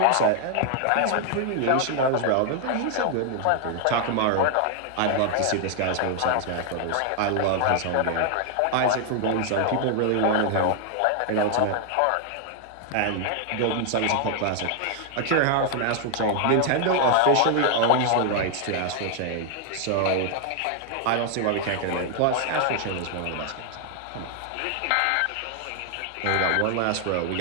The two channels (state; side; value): different; both; correlation 0.00